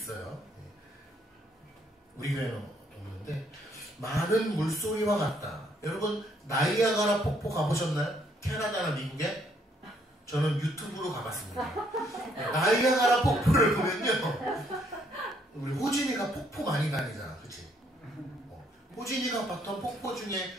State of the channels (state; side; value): normal; both; correlation 0.69